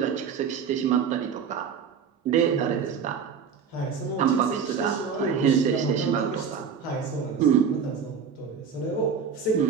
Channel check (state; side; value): quieter; left; 6.7 dB